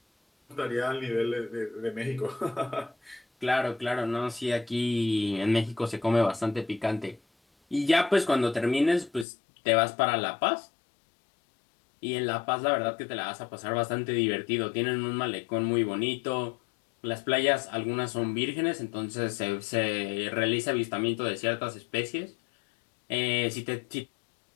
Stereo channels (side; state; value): right; drops out; at 9.2 s